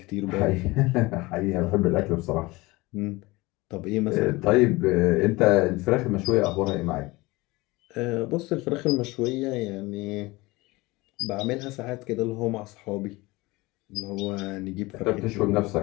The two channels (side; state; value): right; quieter; 21.9 dB